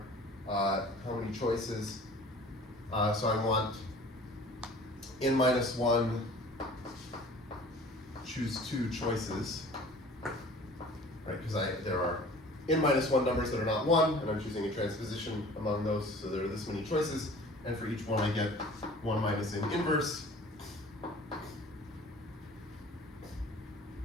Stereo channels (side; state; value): both; normal; correlation 0.46